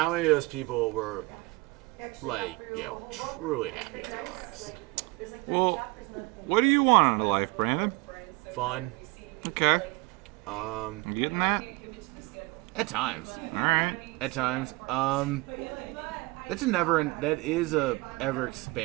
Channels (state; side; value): quieter; left; 24.4 dB